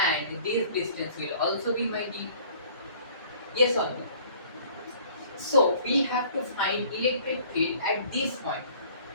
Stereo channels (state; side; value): inverted; both; correlation -0.53